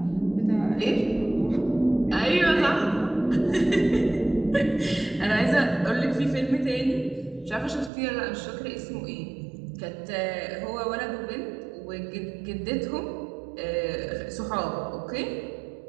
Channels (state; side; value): drops out; left; at 7.9 s